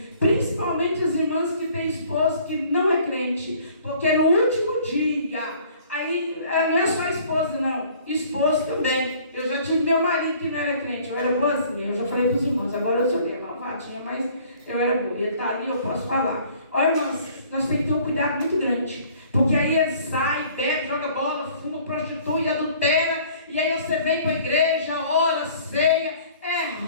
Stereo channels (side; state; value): both; inverted; correlation -0.55